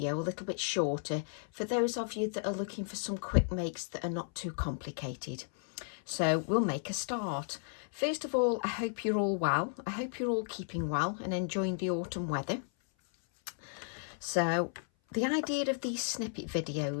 a little bit shorter for those of you that are looking for some quick makes that are not too complicated. So we'll make a start. First of all, I hope you're all well. I hope you're all keeping well and enjoying the autumn weather. So the idea of these snippet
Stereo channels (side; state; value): right; silent; 55 dB below the other